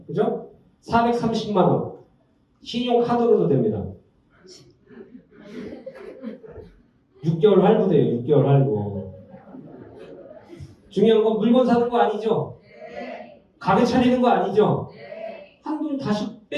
그죠? 430만 원 신용카드로도 됩니다. 6개월 할부돼요. 6개월 할부. 중요한 건 물건 사는 거 아니죠? 가게 차리는 거 아니죠? 한돈 다시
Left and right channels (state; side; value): identical; both; correlation 1.00